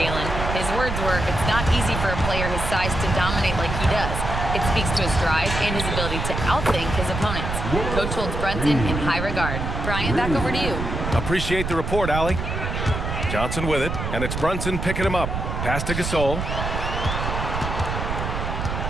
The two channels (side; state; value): right; noise; rumble, 3 dB below the sound